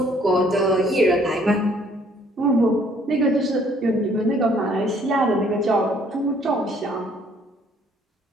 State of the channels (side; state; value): both; normal; correlation 0.62